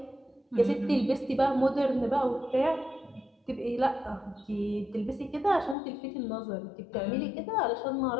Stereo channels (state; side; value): drops out; right; at 5.8 s